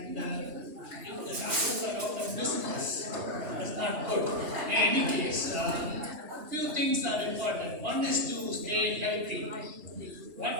if the doctors are out of business, that's not good. In any case, few things are important. One is to stay healthy.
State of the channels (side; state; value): left; late; 2.0 ms